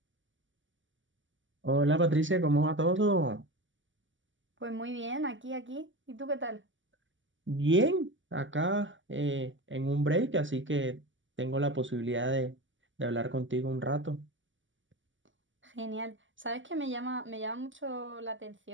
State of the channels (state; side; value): late; left; 0.55 ms